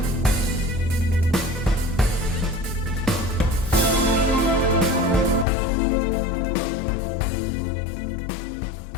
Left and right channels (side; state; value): right; drops out; at 5.5 s